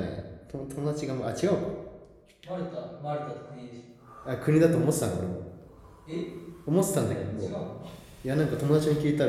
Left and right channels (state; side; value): identical; both; correlation 1.00